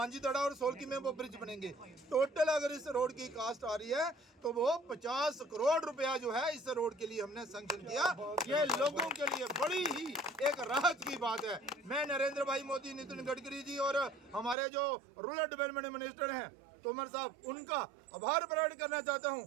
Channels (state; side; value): drops out; left; at 14.6 s